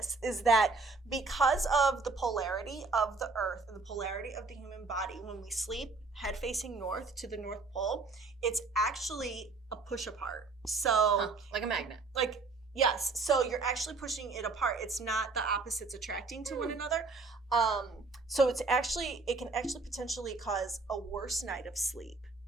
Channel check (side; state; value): left; quieter; 3.9 dB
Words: is that because of the polarity of the earth and the polarity of the human body, when we sleep head facing north to the North Pole, it's actually a push apart. So like a magnet. Yes, so you're actually pushing it apart. It's not the opposites attracting to one another. So it can actually potentially cause a worse night of sleep